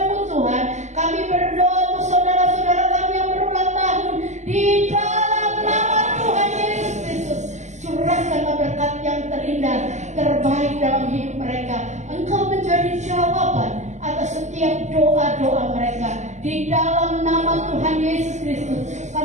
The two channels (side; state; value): left; late; 0.34 ms